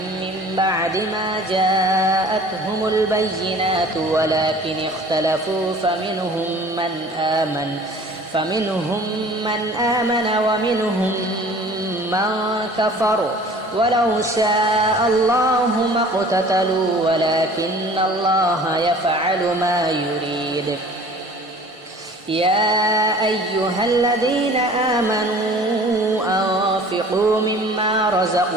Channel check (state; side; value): normal; both; correlation 0.47